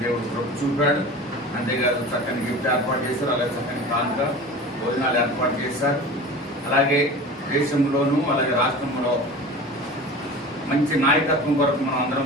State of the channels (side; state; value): both; normal; correlation 0.36